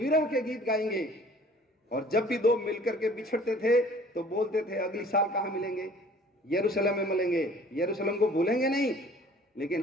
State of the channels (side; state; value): both; normal; correlation 0.51